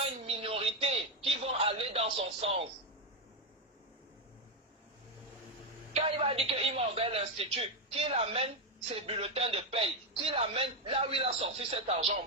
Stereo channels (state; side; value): normal; both; correlation 0.07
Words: une minorité qui vont aller dans son sens. Quand il va dire qu'il m'a ouvert l'institut, qu'il amène ses bulletins de paye, qu'il amène là où il a sorti cet argent,